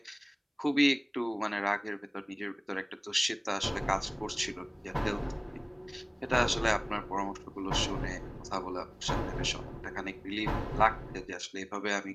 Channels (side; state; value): both; identical; correlation 1.00